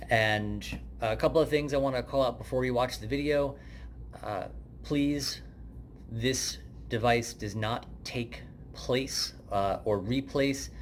And a couple of things I want to call out before you watch the video. Please, this device does not take place or replace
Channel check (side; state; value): both; identical; correlation 1.00